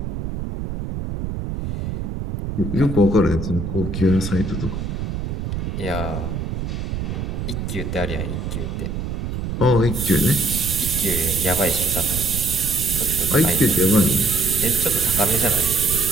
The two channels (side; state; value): right; noise; rumble, 4 dB below the sound